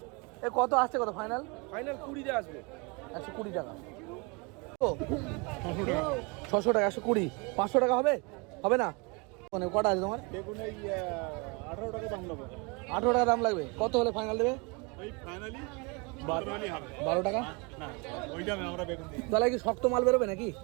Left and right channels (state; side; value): quieter; left; 29.8 dB